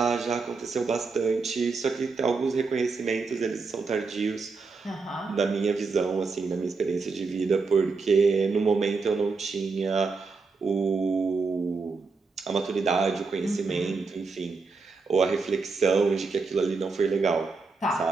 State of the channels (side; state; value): left; quieter; 4.3 dB